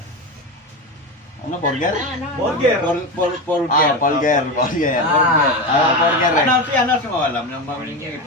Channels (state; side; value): normal; both; correlation 0.19